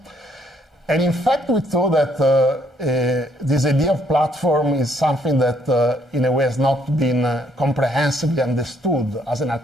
And in fact, we thought that this idea of platform is something that, in a way, has not been comprehensively understood as an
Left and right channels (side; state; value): both; normal; correlation 0.68